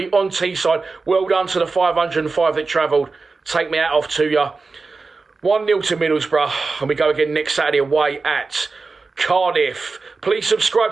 on Teesside. Well done to the 505 that travelled. Take me out off to you. 1-0 to Middlesbrough, and we go again next Saturday away at Cardiff. Please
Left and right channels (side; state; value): left; quieter; 4.1 dB